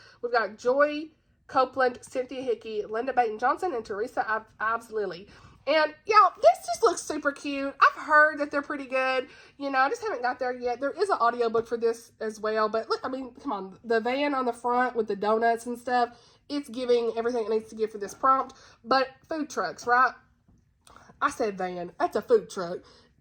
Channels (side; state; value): both; identical; correlation 1.00